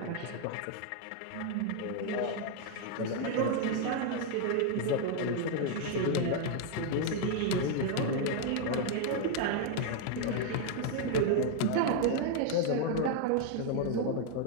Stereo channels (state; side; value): different; both; correlation 0.00